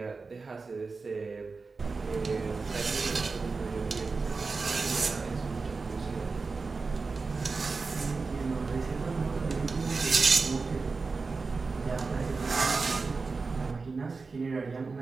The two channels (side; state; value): left; quieter; 4.2 dB